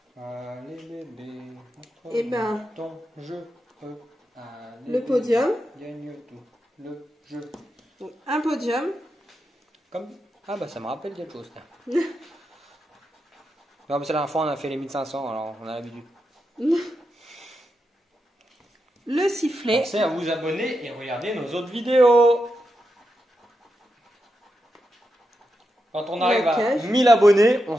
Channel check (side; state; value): both; normal; correlation 0.87